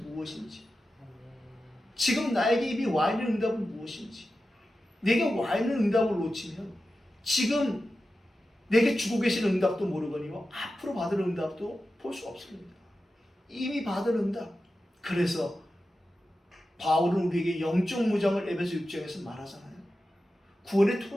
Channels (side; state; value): both; normal; correlation 0.92